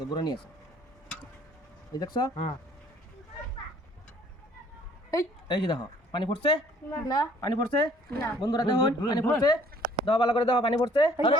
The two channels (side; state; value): both; normal; correlation 0.58